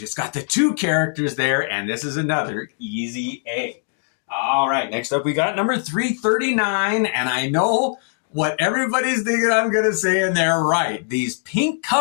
It's got the two characters there, and this is another easy A. All right, next up we got number 339, and I know what everybody's thinking I'm going to say, and they're right. These pink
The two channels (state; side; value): silent; right; 57 dB below the other